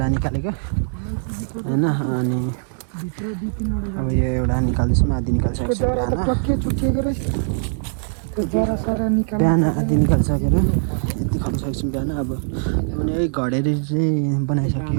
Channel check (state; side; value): silent; left; digital silence